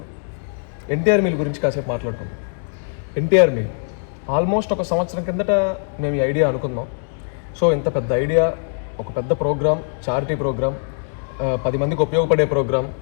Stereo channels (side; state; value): right; silent; 65 dB below the other